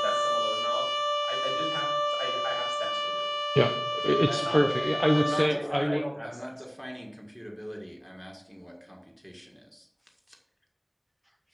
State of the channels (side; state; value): both; identical; correlation 1.00